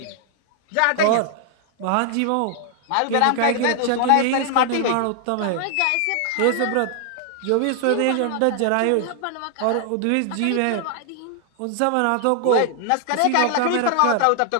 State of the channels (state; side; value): different; both; correlation 0.00